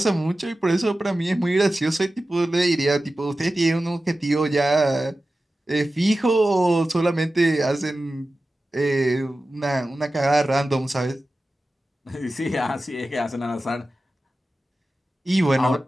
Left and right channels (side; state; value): both; normal; correlation 0.94